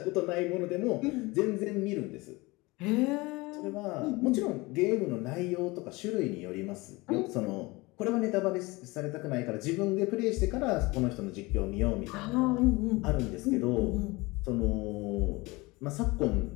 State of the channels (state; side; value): quieter; right; 23.3 dB